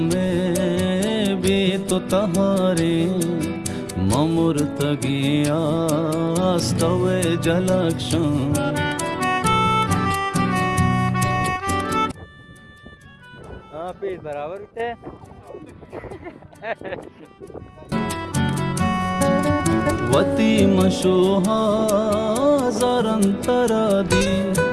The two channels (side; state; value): both; identical; correlation 1.00